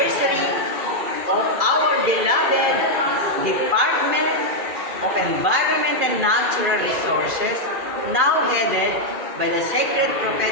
of our beloved Department of Environment and Natural Resources, now headed by the Sacred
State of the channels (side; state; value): left; late; 2.4 ms